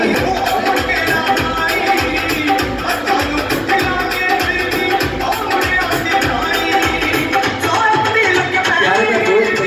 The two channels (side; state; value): both; identical; correlation 1.00